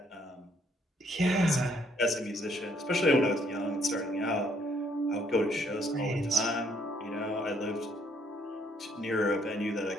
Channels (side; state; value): both; normal; correlation 0.68